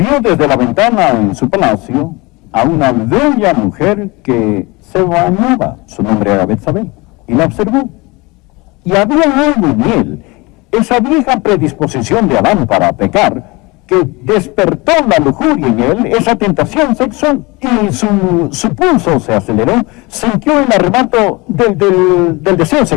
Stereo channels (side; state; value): right; quieter; 24.5 dB